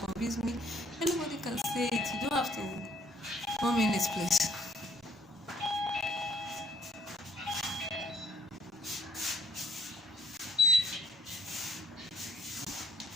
me, anybody can say it. You don't have to come in this place.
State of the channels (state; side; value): normal; both; correlation 0.62